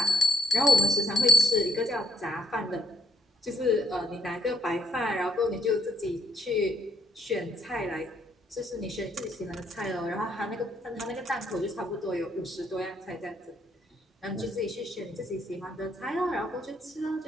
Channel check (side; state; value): both; normal; correlation 0.70